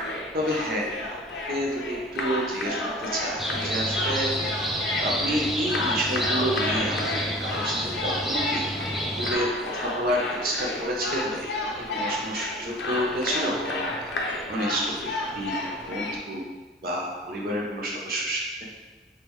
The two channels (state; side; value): normal; both; correlation 0.42